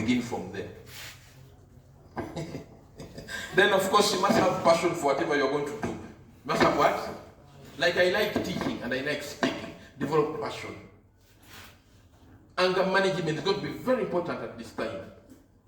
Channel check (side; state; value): both; identical; correlation 1.00